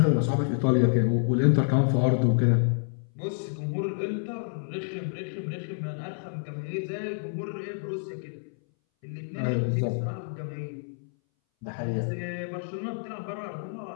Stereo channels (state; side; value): silent; right; 59 dB below the other